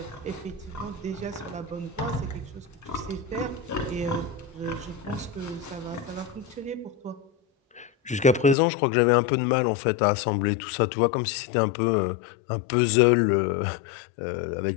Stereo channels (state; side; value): drops out; right; at 8.6 s